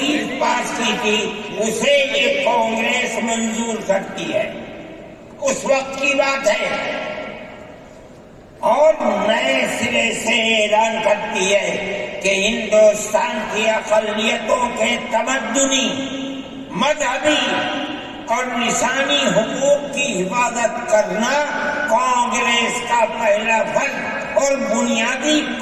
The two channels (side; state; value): both; identical; correlation 1.00